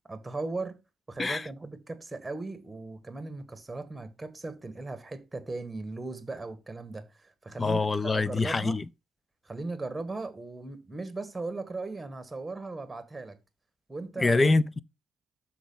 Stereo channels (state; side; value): normal; both; correlation 0.92